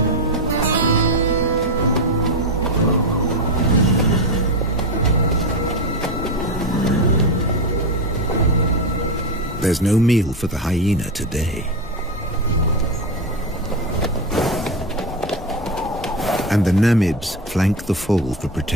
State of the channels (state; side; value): normal; both; correlation 0.14